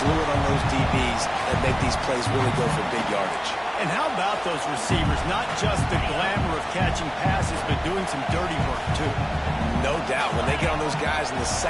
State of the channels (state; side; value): identical; both; correlation 1.00